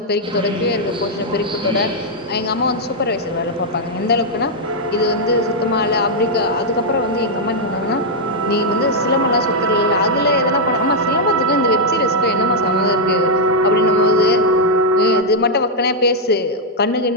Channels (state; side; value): normal; both; correlation -0.04